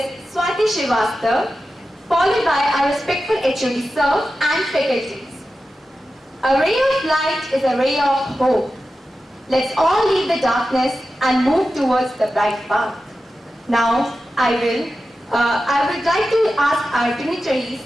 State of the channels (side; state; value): both; normal; correlation 0.92